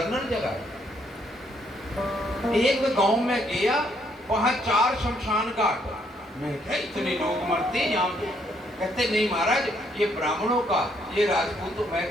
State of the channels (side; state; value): both; normal; correlation 0.71